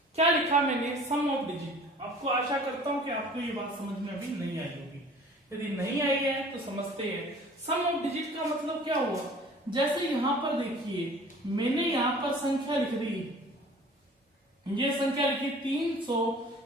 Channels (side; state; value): both; normal; correlation 0.47